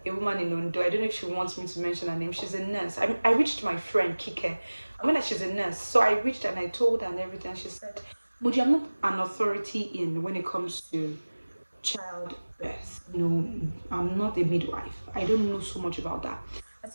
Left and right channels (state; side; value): inverted; both; correlation -1.00